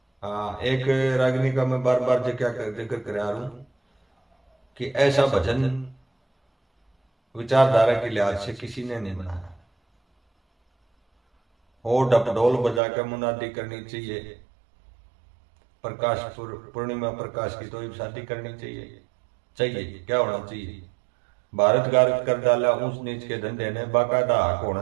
एक रागिनी का मैं बार बार जिक्र कर रहा हूं कि ऐसा भजन विचारधारा के लिहाज से किसी ने नहीं बनाया। हो डपडोल बजा कर मुनादी करनी चाहिए, प्रकाश पूर्णिमा प्रकाश की तो शादी करनी चाहिए। क्या होना चाहिए? भारत गार्ग कर डाला ऊंच नीच के धंधे ने, बाकायदा हक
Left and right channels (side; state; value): left; drops out; at 12.8 s